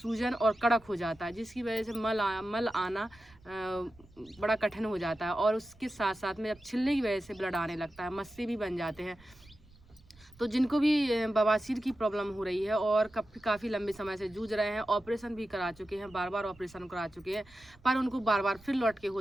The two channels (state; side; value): noise; right; rumble, 26 dB below the sound